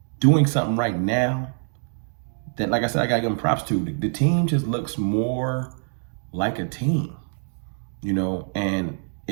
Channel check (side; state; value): left; silent; digital silence